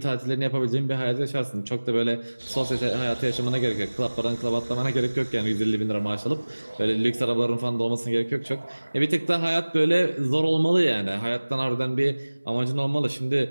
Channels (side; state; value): both; inverted; correlation -1.00